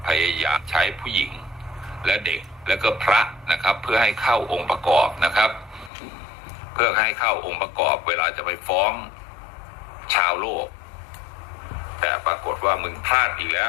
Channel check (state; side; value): drops out; right; at 5.9 s